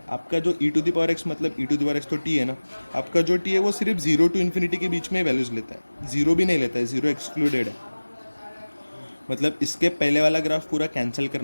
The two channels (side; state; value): both; inverted; correlation -1.00